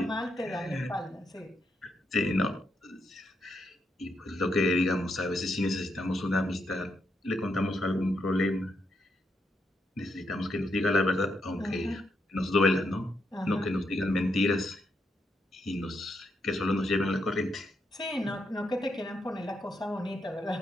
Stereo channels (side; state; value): both; normal; correlation 0.80